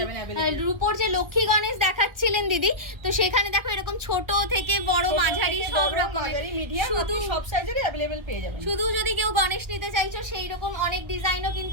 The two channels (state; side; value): late; left; 1.3 ms